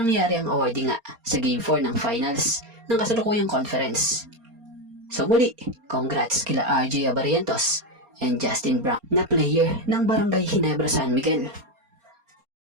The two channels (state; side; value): late; left; 4.3 ms